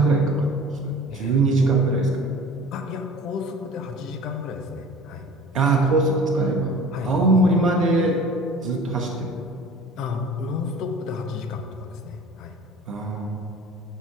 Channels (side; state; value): both; normal; correlation 0.43